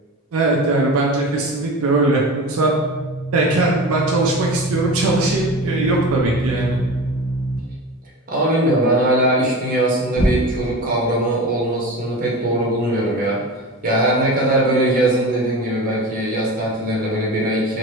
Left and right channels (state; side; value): normal; both; correlation 0.31